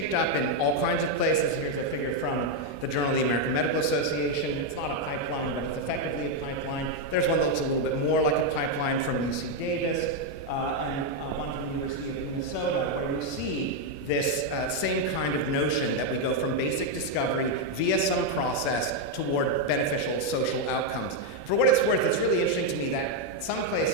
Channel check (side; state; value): right; late; 21 ms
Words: up in all kinds of places. Here's a figure from the Journal of the American Medical Association. It's not a pipeline, but it's effectively a pipeline. There's one that looks a little bit more like a pipeline from UC Davis and one from the University of Minnesota, where you see this same kind of notion that we go from basic discovery via some process toward beneficial social outcomes. For what it's worth, it's really interesting to me that some